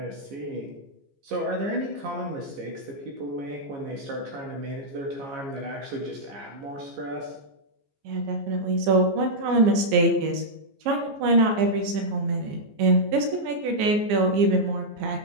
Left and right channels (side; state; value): left; late; 15 ms